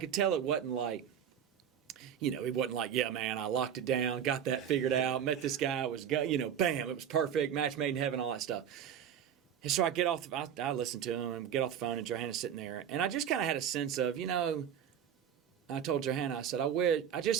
tell it wasn't like, it wasn't like, yeah, man, I locked it down, got that figured out, met this guy, bam, it was perfect, match made in heaven, all that stuff. And so I get off, I listen to him and get off the phone, and Johanna's sitting there, and I just kind of had a sense of, I told Johanna, I said,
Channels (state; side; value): quieter; left; 8.9 dB